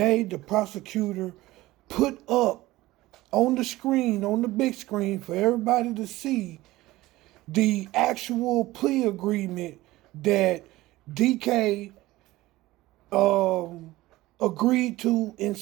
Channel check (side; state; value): left; quieter; 17.9 dB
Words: the prosecutor put up on the screen, on the big screen for everybody to see, the actual plea agreement that DK agreed to and